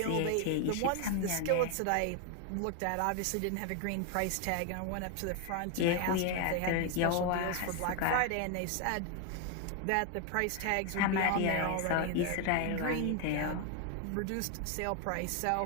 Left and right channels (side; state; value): both; different; correlation 0.01